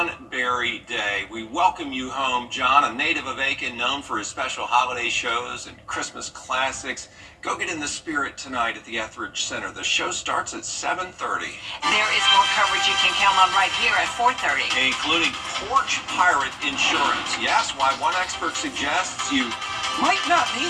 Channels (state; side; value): identical; both; correlation 1.00